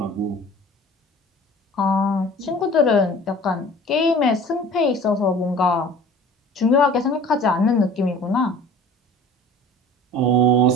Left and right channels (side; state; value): both; normal; correlation 0.44